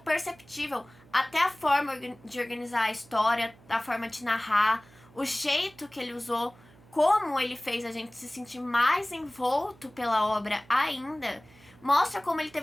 até a forma de organizar a história, a forma de narrar, o jeito que ele usou, como ele fez a gente se sentir mais envolto pela obra ainda, mostra como ele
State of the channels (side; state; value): right; noise; hum, 26 dB below the sound